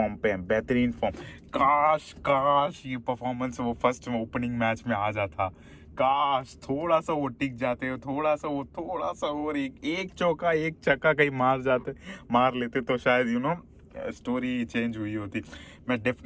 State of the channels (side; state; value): both; identical; correlation 1.00